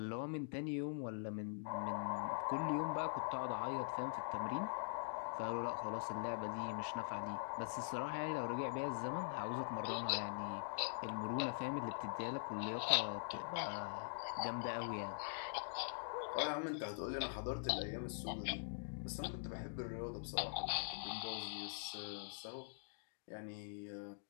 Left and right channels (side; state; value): right; silent; digital silence